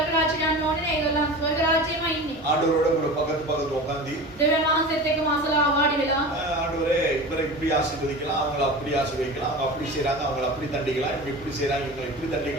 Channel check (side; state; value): both; normal; correlation 0.33